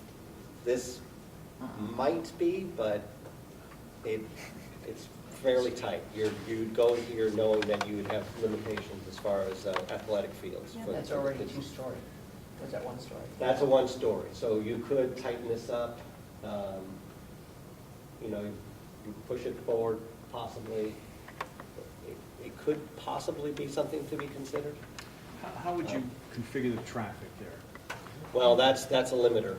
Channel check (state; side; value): identical; both; correlation 1.00